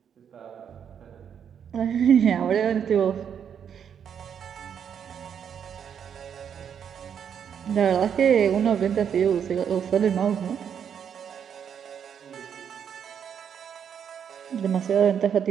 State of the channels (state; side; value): quieter; left; 8.1 dB